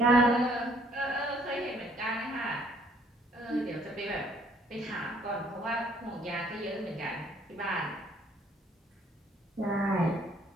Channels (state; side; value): normal; both; correlation 0.62